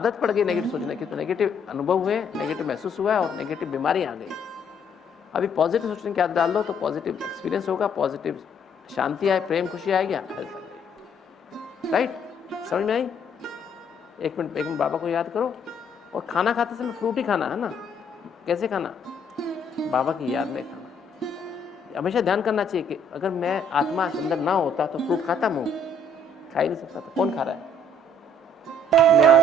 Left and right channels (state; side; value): normal; both; correlation 0.64